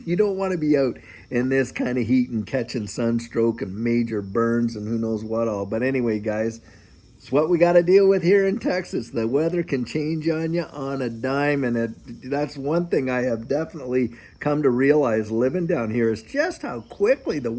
don't want to be out in this kind of heat and catching sunstroke and major burns and who knows what all. But anyway, guys, it's what we got to deal with here in Texas. The weather can change on you on a dime, and that's one thing I have definitely come to realize living down here is just how quickly the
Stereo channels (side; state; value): both; identical; correlation 1.00